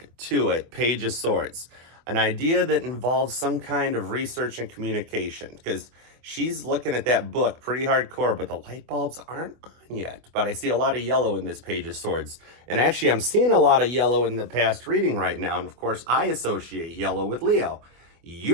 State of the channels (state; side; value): late; left; 25 ms